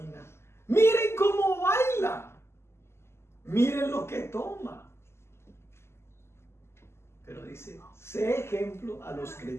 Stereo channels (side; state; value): right; late; 0.12 ms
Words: Miren cómo baila. Miren lo que toma. Pero dice, sé ejemplo a los